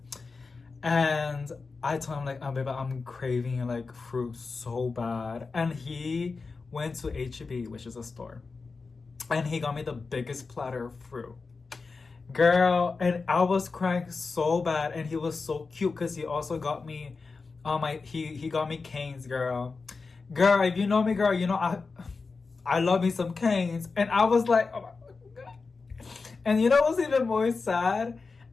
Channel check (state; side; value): quieter; right; 4.3 dB